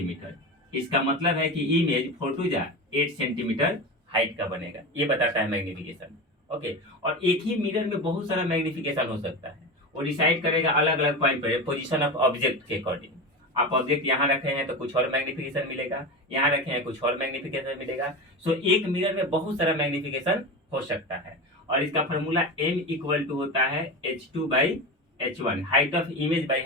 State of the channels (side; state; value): both; normal; correlation 0.24